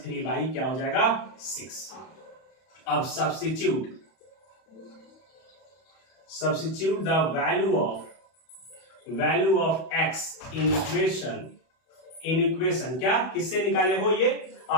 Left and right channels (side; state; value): right; late; 31 ms